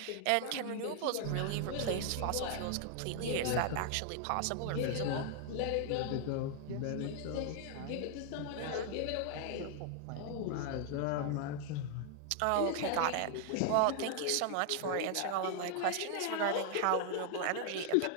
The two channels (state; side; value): different; both; correlation 0.00